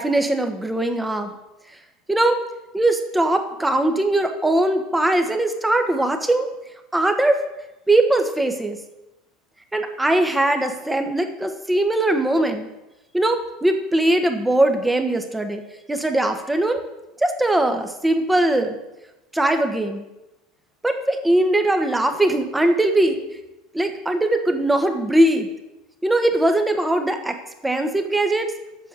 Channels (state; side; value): normal; both; correlation 0.84